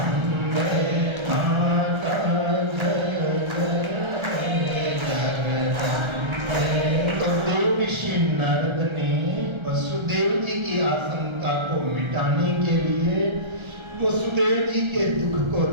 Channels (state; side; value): late; left; 1.3 ms